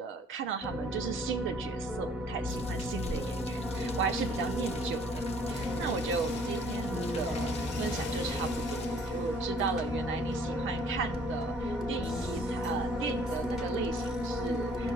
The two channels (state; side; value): normal; both; correlation 0.57